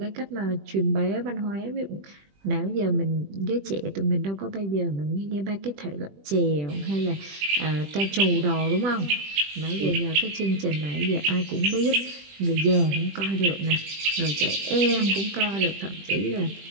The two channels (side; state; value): left; late; 20 ms